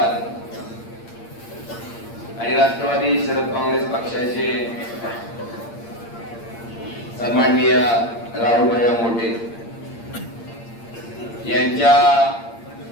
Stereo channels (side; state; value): right; late; 8.7 ms